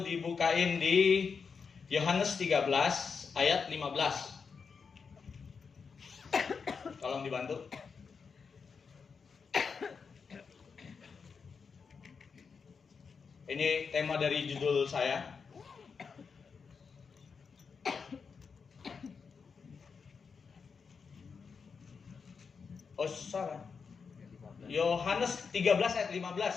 di Yohanes 13 ayat 15. Tolong dibantu. Ini tema dari judul saya. Oh, salah. Yohanes 13 ayat 15.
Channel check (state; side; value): quieter; right; 5.6 dB